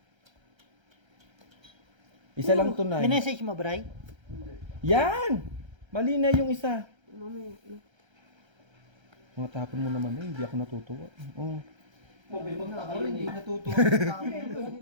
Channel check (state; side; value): late; left; 1.3 ms